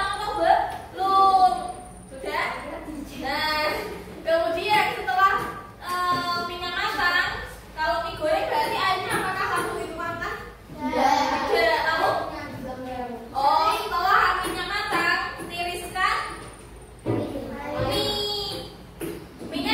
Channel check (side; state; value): both; identical; correlation 1.00